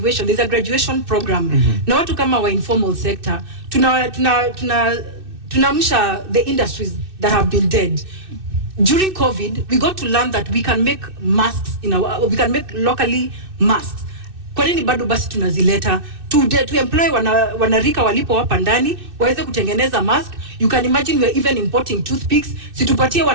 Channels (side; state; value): left; late; 2.6 ms